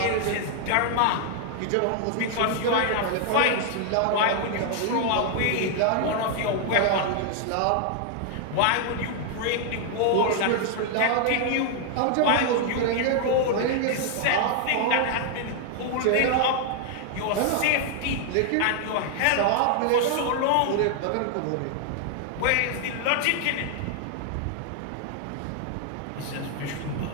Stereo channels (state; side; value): different; both; correlation 0.00